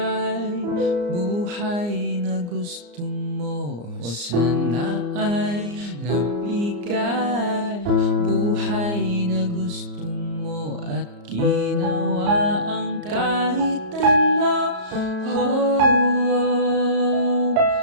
buhay na gusto mo, o sana ay nabigay buhay na gusto mo, at ginawa ang kahit ano.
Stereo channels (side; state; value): left; late; 34 ms